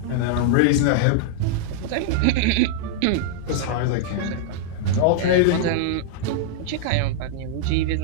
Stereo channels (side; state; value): both; different; correlation -0.01